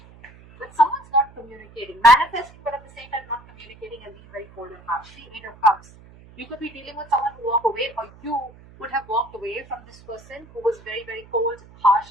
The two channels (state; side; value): noise; right; hum, 23 dB below the sound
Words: But someone's not communicating, manifesting, but at the same time not communicating and being very cold and harsh. See, 8 of Cups. You could be dealing with someone who walked away, or you would have walked away from this person who was very, very cold,